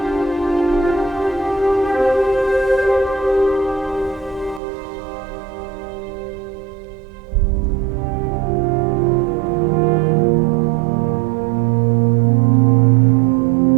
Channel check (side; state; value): left; drops out; at 4.6 s